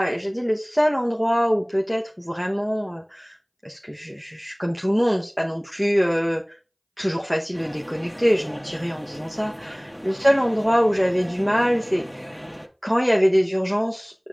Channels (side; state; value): both; identical; correlation 1.00